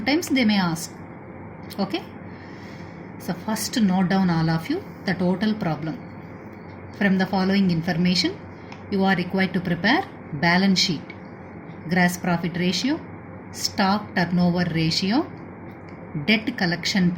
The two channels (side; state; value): both; identical; correlation 1.00